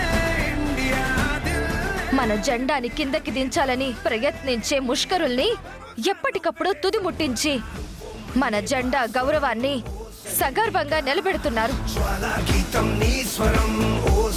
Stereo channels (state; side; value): identical; both; correlation 1.00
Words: మన జెండాని కిందకి దించాలని ప్రయత్నించే ముష్కరుల్ని ఎప్పటికప్పుడు తుదిముట్టించి మన జెండా గౌరవాన్ని సగర్వంగా నిలబెడుతున్నారు.